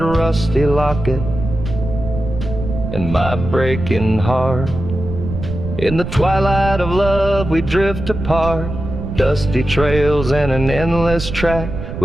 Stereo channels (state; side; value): noise; right; rumble, 7 dB below the sound